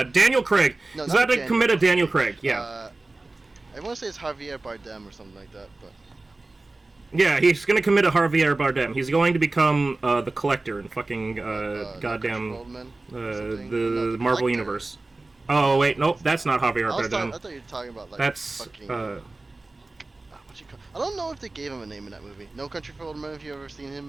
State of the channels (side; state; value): left; quieter; 3.2 dB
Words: Daniel Craig. No, He's about to commit a Daniel Craig. Yeah. I want to say it's Javier Bardem or something like that, but. Yeah, he's gonna commit a Javier Bardem. He's going to become the Collector in fucking goddamn the Marvel Collector. Universe. Oh wait, nope, that's not Javier Bardem. I thought you were talking about like that's fucking. I don't know if they gave him a name in that movie. No Country for Old Men. Have you ever seen